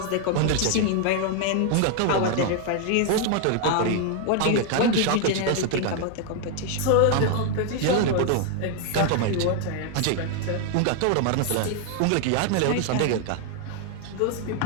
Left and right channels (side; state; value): both; different; correlation 0.00